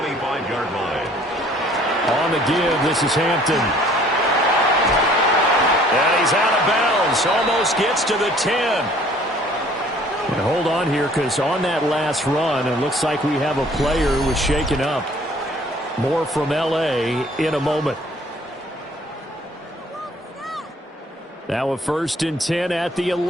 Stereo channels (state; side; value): normal; both; correlation 0.56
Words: line. On the give, this is Hampton. And he's out of bounds. Almost gets to the 10. And hold on here, because on that last run, it looks like we have a player who was shaken up. More from L.A. in a moment. Now a 1st and 10 at the